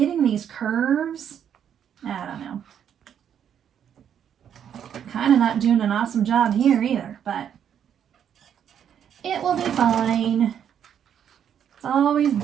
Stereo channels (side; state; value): left; quieter; 8.9 dB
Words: these curves, I don't know. Kind of not doing an awesome job here either, but it will be fine. It's always